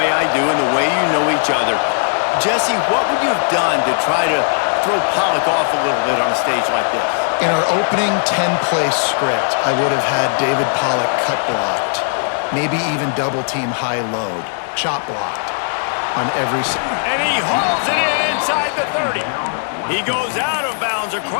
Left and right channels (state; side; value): silent; right; digital silence